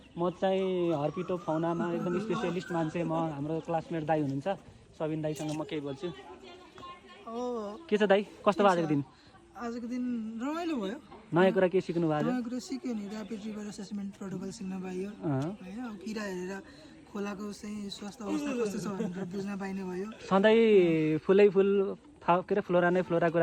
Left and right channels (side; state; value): both; identical; correlation 1.00